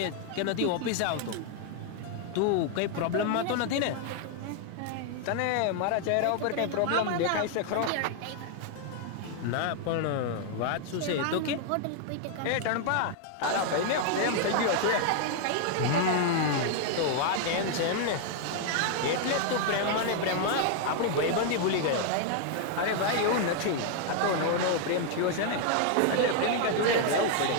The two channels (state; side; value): different; both; correlation 0.00